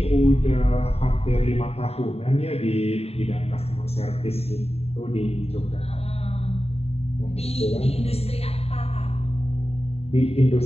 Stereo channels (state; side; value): late; right; 0.29 ms